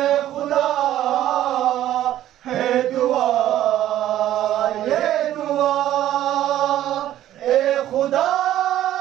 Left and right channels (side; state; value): left; quieter; 12.7 dB